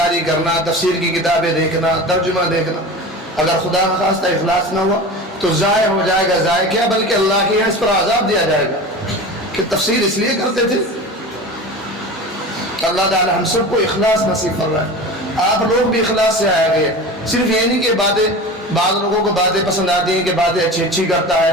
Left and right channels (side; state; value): both; normal; correlation 0.33